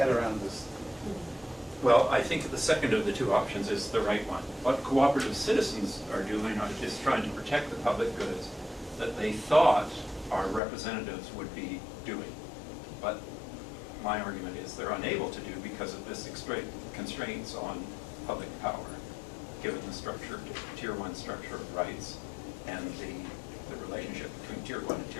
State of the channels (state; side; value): drops out; right; at 10.6 s